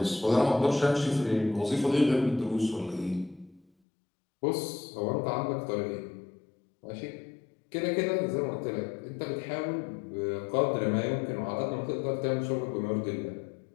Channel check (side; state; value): right; drops out; at 3.7 s